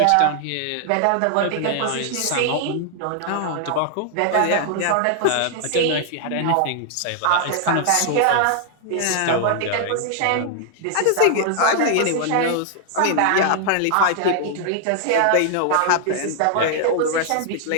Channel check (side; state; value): both; different; correlation 0.00